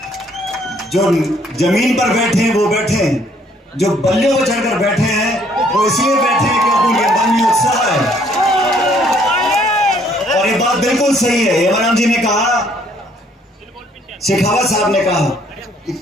जो जमीन पर बैठे हैं वो बैठे हैं, जो बल्लियों पर चढ़कर बैठे हैं वो इसलिए बैठे हैं क्योंकि उनके मन में उत्साह है। और ये बात बिल्कुल सही है। हेमराम जी ने कहा, शेखावत साहब ने कहा,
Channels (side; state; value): both; normal; correlation 0.64